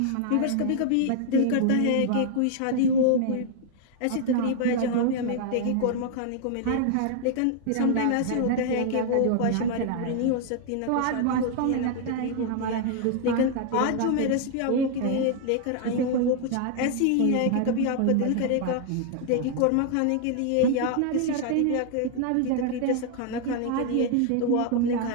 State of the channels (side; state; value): both; different; correlation 0.00